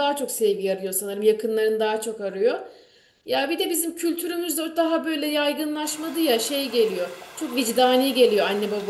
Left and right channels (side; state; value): both; identical; correlation 1.00